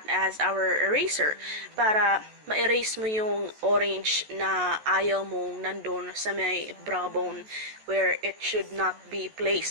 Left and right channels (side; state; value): left; late; 14 ms